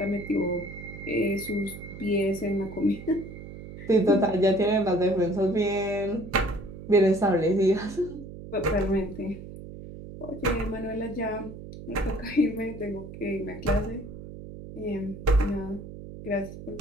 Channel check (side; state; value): right; noise; hum, 13 dB below the sound